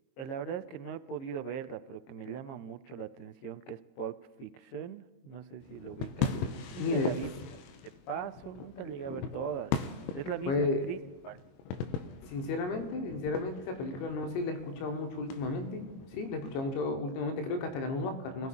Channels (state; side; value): late; right; 22 ms